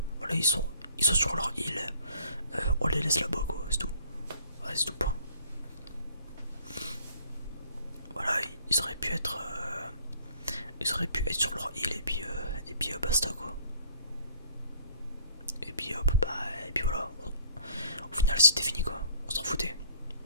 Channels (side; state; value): both; inverted; correlation -0.56